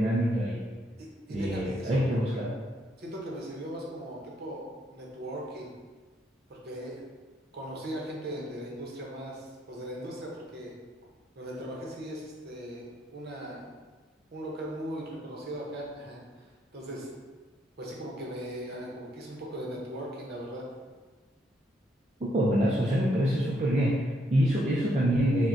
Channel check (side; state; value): both; normal; correlation 0.74